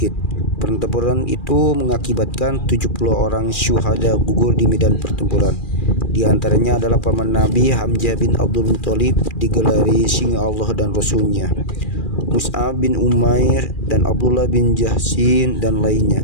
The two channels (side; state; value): right; late; 2.4 ms